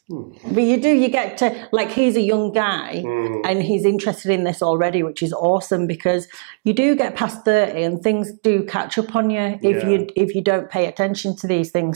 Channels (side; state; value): left; quieter; 37.9 dB